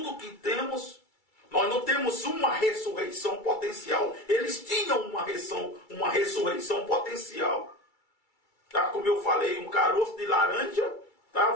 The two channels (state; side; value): late; right; 2.3 ms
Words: o que temos. Nós não temos uma ressurreição potencial. Eles tinham uma ressurreição potencial. Tá? Como eu falei, um caroço de laranja. Tá?